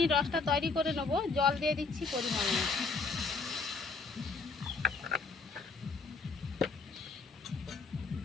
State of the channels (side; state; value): right; quieter; 4.4 dB